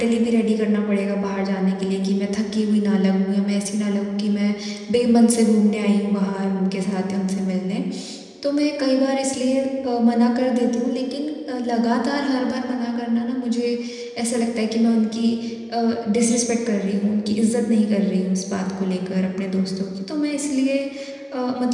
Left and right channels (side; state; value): both; identical; correlation 1.00